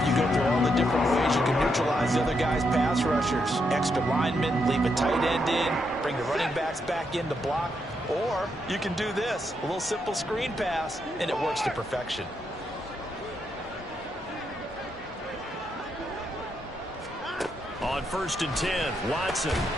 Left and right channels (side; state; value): both; normal; correlation 0.80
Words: you go through all the different ways you can neutralize the other guy's pass rushers. Extra linemen, leave a tight end in, bring the running backs back in to block. Or you can do this, a little simple screen pass, and it works to perfection. On 1st and 10, Watson.